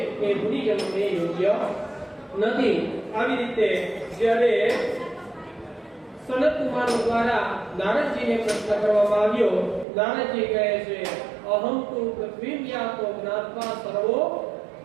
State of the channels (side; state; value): left; drops out; at 9.9 s